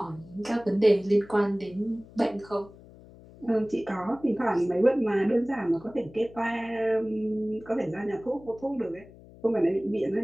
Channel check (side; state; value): left; noise; hum, 21 dB below the sound